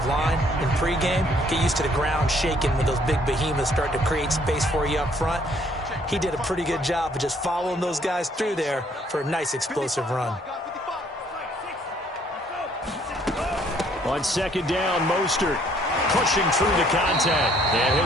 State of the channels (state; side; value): normal; both; correlation 0.64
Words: line in pregame. Get used to the ground shaking when those big behemoths start to create space for you up front. He did a pretty good job of just following those guys through there for a nice explosive run. On second down, Mostert pushing through the contact. And